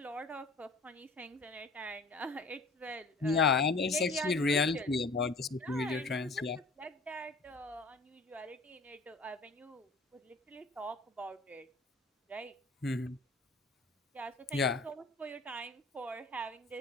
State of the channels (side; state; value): right; quieter; 3.3 dB